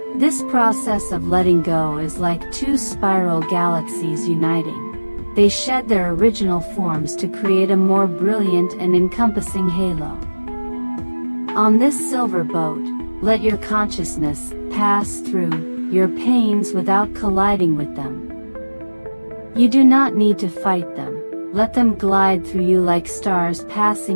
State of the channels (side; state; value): both; inverted; correlation -1.00